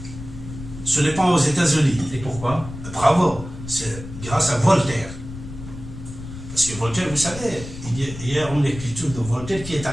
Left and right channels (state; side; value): noise; left; rumble, 12 dB below the sound